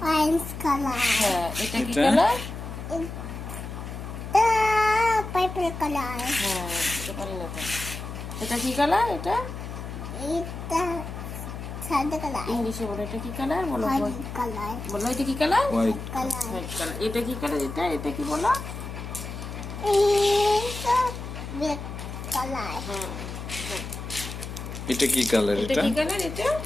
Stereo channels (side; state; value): left; noise; hum, 8 dB below the sound